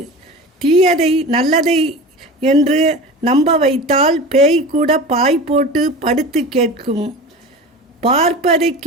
தீயதை நல்லதை என்று நம்ப வைத்தால் பேய் கூட பாய் போட்டு படுத்து கேட்கும். பார்ப்பதை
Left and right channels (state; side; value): normal; both; correlation 0.33